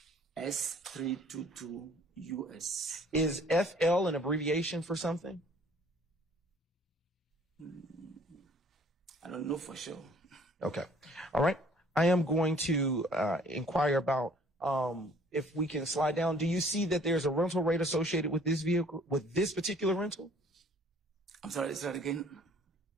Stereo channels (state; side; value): normal; both; correlation 0.56